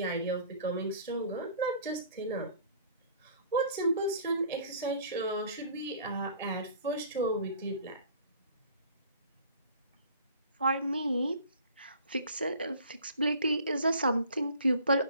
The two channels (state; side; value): inverted; both; correlation -0.50